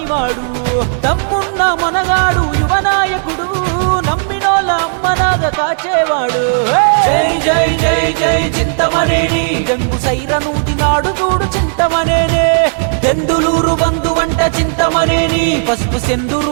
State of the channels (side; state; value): left; silent; digital silence